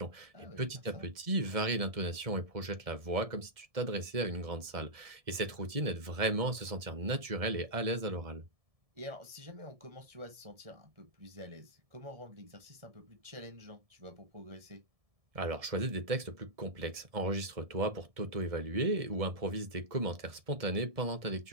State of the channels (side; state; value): left; late; 1.7 ms